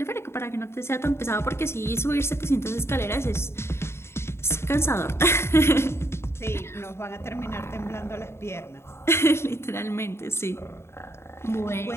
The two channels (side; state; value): right; late; 0.12 ms